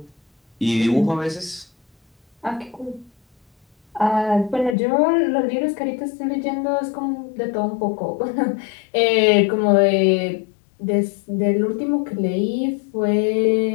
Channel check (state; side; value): drops out; right; at 4.8 s